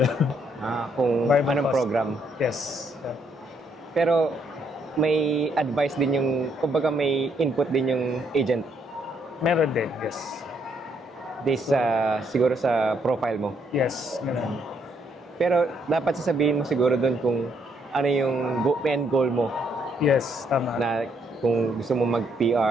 Kung Variable anong cost. program. Yes. Yeah. Pero may advice din yung, kumbaga may input din yung agent. Meron din, yes. This siguro sa profile mo. Yes, ganun. Pero dapat sasabihin mo siguro doon kung ano yung end goal mo Yes, tama. na kung gusto mo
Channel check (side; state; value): both; normal; correlation 0.72